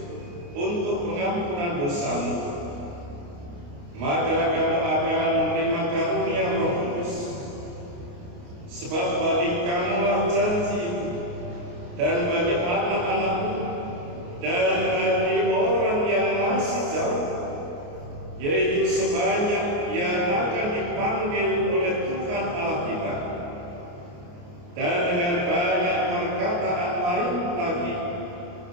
untuk pengampunan dosamu. Maka kamu akan menerima karunia Roh Kudus. Sebab bagi kamulah janji, dan bagi anak-anakmu, dan bagi orang yang masih jauh, yaitu sebanyak yang akan dipanggil oleh Tuhan Allah kita." Dan dengan banyak perkataan lain lagi,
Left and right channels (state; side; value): late; left; 29 ms